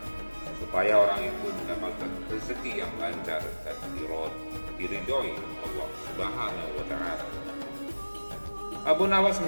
supaya orang itu mendapatkan rezeki yang lancar dan diridhoi Allah Subhanahu wa Ta'ala. Abu Nawas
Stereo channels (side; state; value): both; inverted; correlation -1.00